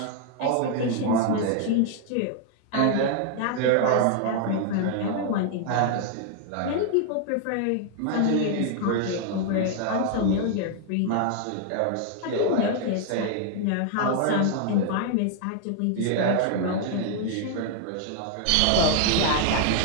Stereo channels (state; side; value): different; both; correlation 0.00